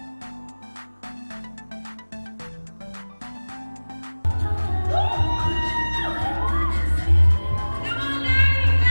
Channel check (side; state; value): both; inverted; correlation -1.00